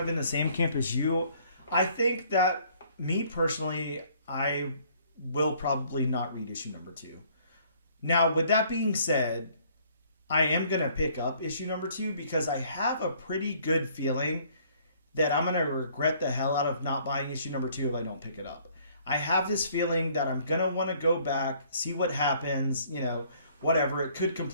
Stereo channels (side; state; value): both; inverted; correlation -0.60